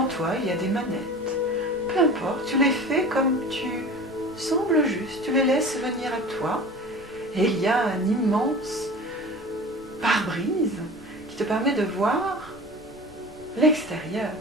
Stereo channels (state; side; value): normal; both; correlation 0.37